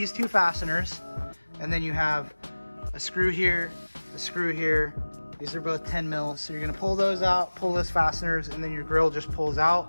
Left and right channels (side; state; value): both; inverted; correlation -1.00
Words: 2 fasteners, and then you have a screw here, a screw here. These are both 10 mils. So you're gonna pull those out, pull those fasteners, and then your grill just pulls